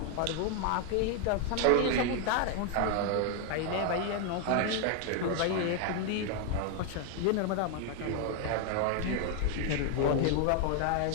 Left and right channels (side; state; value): both; different; correlation 0.01